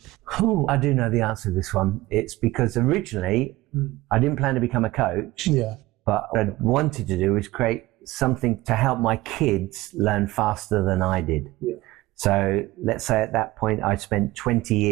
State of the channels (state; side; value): quieter; left; 18.5 dB